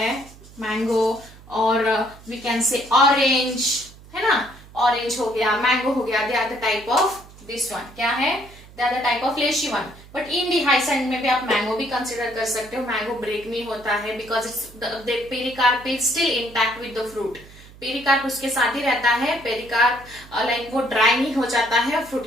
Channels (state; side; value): noise; right; hum, 21 dB below the sound